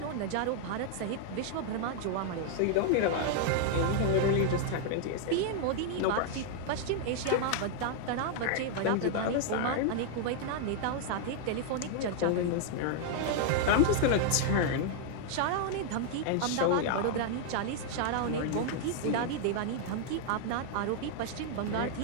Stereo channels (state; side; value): different; both; correlation 0.00